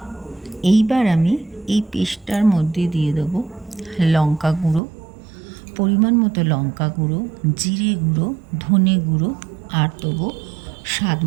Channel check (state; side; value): drops out; left; at 4.8 s